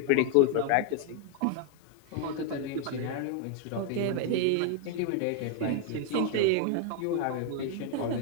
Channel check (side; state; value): both; different; correlation 0.00